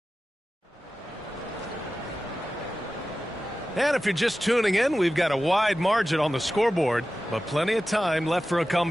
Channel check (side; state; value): both; normal; correlation 0.94